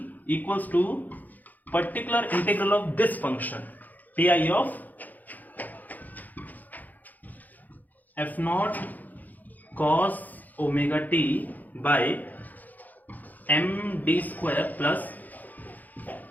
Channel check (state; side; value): late; right; 0.082 ms